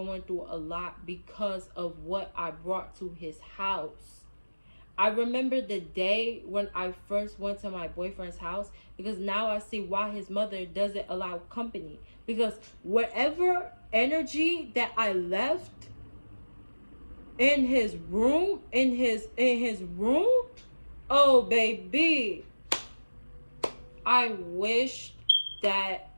through a lot because of what I brought to his house. I remember the day when I first went to my boyfriend's house, because now I see why his mother doesn't allow company. Because whatever energy that I left in his room, oh baby, I wish that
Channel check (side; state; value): both; inverted; correlation -1.00